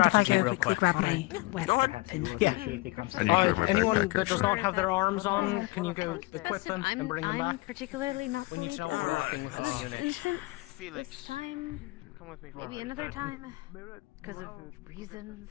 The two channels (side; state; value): right; quieter; 23.1 dB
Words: if I strategy go real quickly quick. grab my weapon? Yeah. Anyone Okay, that does not have their arms on, can you go equip them and bring them I'm back? particularly not the lead of this instance, this time. Maybe another time. Because of reasons.